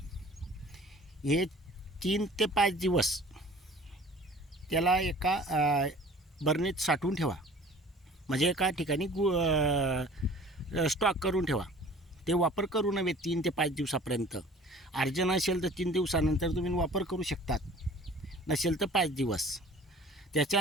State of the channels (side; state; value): both; normal; correlation 0.47